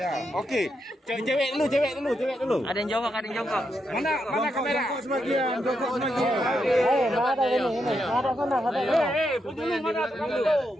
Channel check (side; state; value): both; normal; correlation 0.82